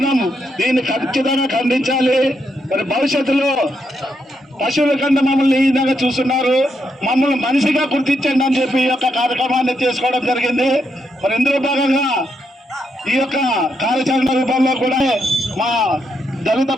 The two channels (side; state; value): both; normal; correlation 0.80